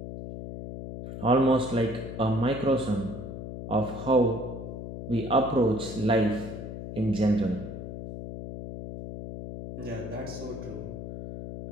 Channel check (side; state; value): left; noise; hum, 9 dB below the sound